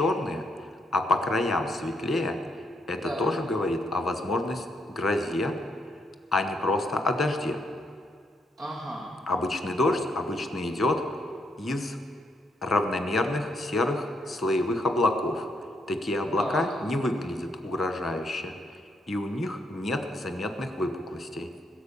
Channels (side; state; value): both; normal; correlation 0.76